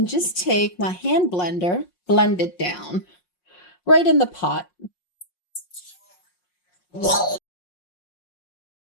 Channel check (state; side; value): late; right; 5.6 ms